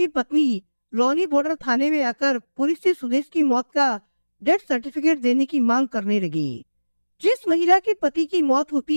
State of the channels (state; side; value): inverted; both; correlation -1.00